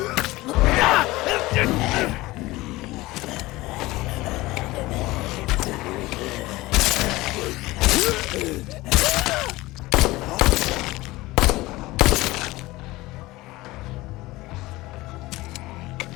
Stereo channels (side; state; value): right; quieter; 19.6 dB